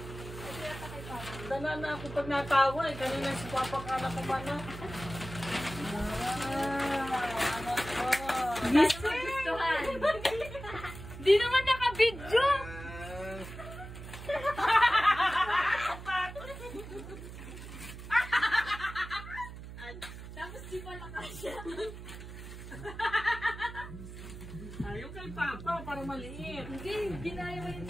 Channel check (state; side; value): noise; right; hum, 12 dB below the sound